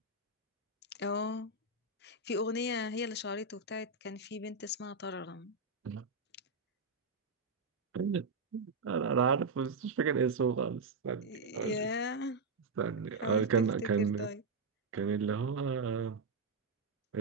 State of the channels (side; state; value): left; quieter; 3.7 dB